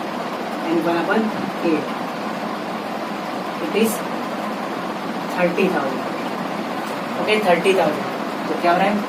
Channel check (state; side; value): identical; both; correlation 1.00